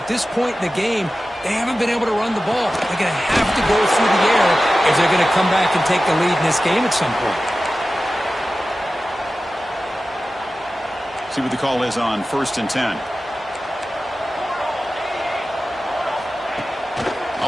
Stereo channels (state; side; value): normal; both; correlation 0.95